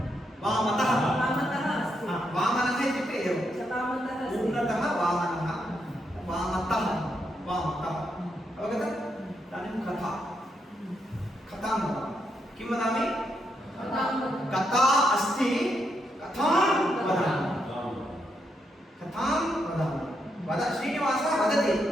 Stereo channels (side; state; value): both; normal; correlation 0.80